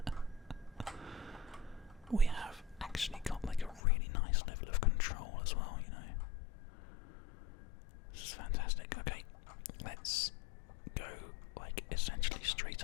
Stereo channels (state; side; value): drops out; right; at 3.8 s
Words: We have actually got like a really nice level of control as well, you know. This is fantastic. Okay, let's go like essentially straight